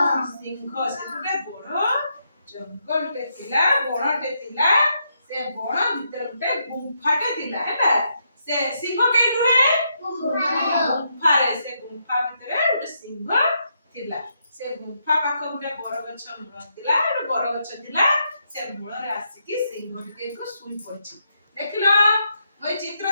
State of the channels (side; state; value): both; inverted; correlation -0.79